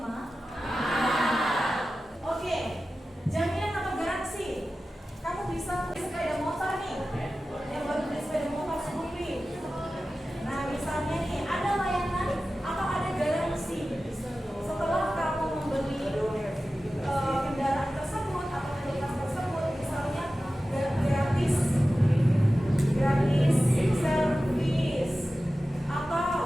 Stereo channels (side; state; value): both; normal; correlation 0.95